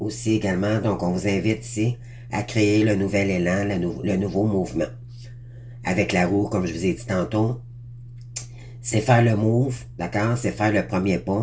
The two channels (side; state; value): both; identical; correlation 1.00